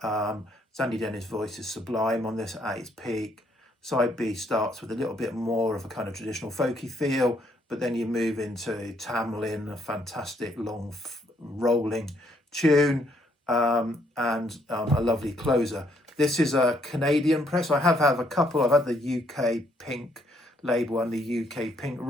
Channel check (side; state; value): both; normal; correlation 0.70